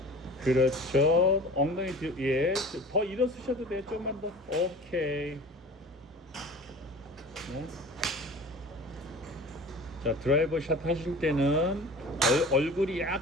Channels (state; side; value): normal; both; correlation 0.39